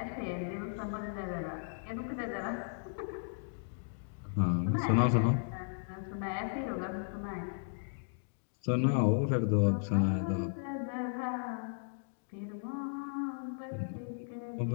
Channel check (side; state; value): right; silent; digital silence